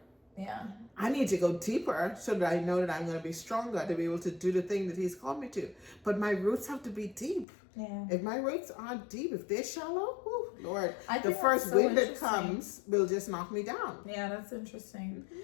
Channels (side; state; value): right; drops out; at 7.5 s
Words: Yeah. I need to go deeper so that I know that I'm going to be stronger to be able to do the thing that He's called me to. But my roots have to be deep. Yeah. If my roots aren't deep, if they're shallow, whew, Lord, I the think first that's so wind that interesting. comes will just knock me down. Yeah, that's interesting.